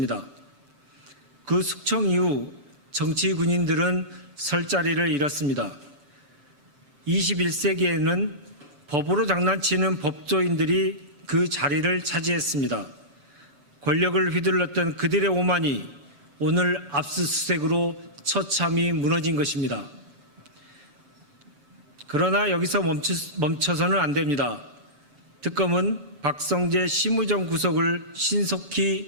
그 숙청 이후 정치 군인들은 설 자리를 잃었습니다. 21세기에는 법으로 장난치는 법조인들이 그 자리를 차지했습니다. 권력을 휘둘렀던 그들의 오만이 오늘 압수수색으로 처참히 무너진 것입니다. 그러나 여기서 멈춰서는 안 됩니다. 특검은 박성재 심우정 구속을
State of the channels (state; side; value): late; left; 7.7 ms